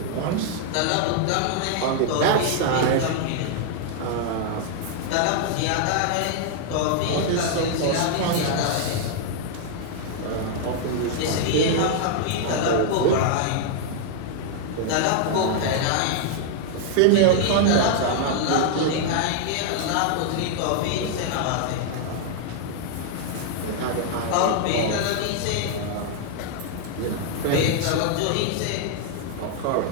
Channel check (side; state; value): both; different; correlation 0.00